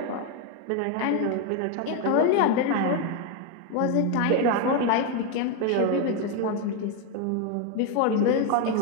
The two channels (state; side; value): different; both; correlation 0.02